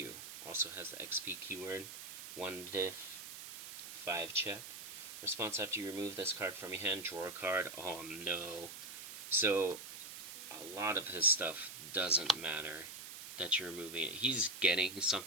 Also has the XP keyword. 1 diff, 5 check. Response after you remove this card from your hand, draw a card. Oh no. So, a lot of his stuff doesn't matter that you're removing it. He's getting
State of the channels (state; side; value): noise; right; hiss, 10 dB below the sound